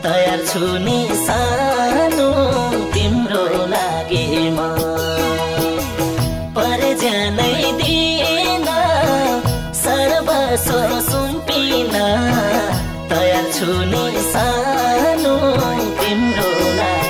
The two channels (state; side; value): identical; both; correlation 1.00